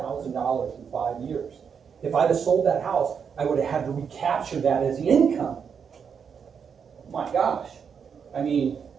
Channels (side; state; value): left; quieter; 6.8 dB